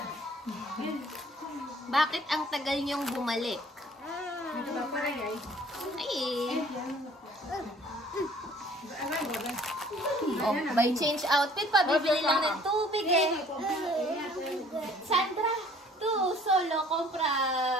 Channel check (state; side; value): normal; both; correlation 0.55